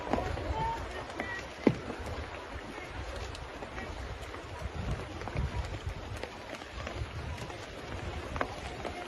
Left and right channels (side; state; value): both; identical; correlation 1.00